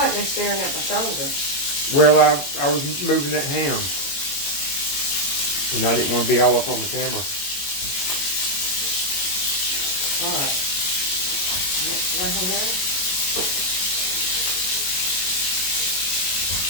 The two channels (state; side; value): late; right; 21 ms